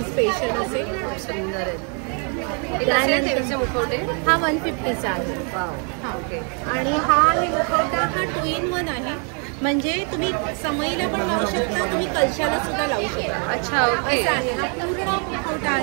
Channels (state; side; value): quieter; left; 39.1 dB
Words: स्पेशल असे. सुंदर आहे. देवीचे मुखवटे. हा 150चा आहे. ओके. आणि हा आहे मुखवटा, हा 2-in-1 आहे. म्हणजे तुम्ही समईला पण लावू शकता, तुम्ही कलशाला सुद्धा लावू शकता. अच्छा. ओके. असा आहे हा पूर्ण मुखवटा